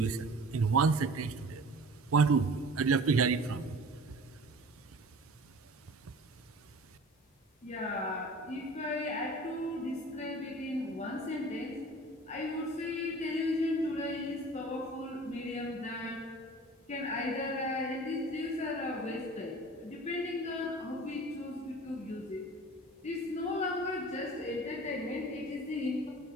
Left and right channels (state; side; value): normal; both; correlation 0.42